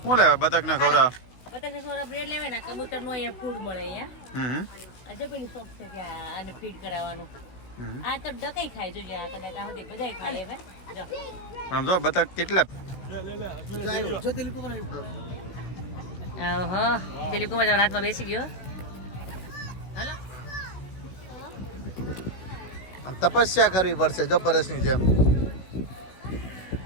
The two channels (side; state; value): right; late; 16 ms